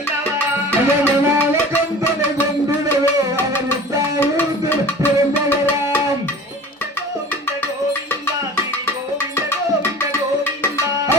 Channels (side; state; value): both; normal; correlation 0.42